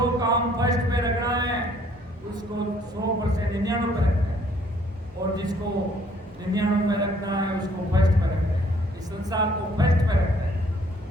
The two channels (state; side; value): normal; both; correlation 0.62